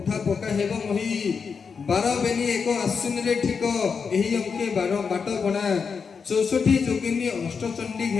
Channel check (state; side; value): quieter; right; 5.7 dB